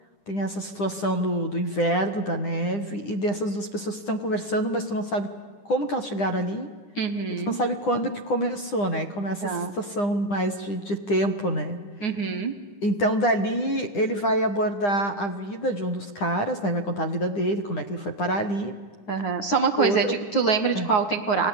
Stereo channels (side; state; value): right; late; 9.9 ms